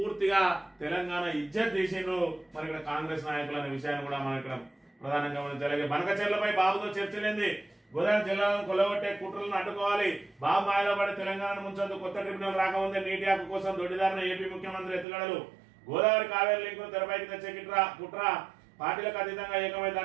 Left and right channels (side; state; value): left; drops out; at 15.1 s